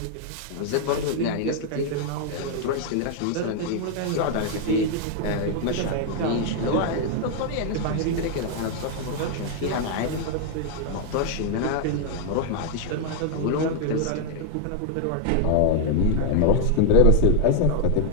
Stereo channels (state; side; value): different; both; correlation 0.00